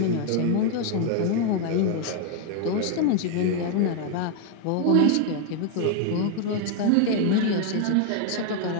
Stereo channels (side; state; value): both; different; correlation 0.01